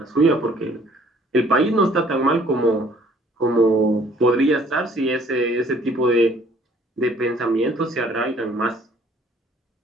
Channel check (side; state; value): both; normal; correlation 0.58